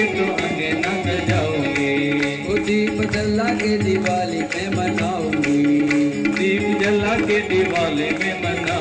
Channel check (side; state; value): both; identical; correlation 1.00